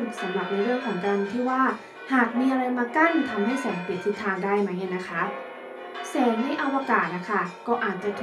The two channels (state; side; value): identical; both; correlation 1.00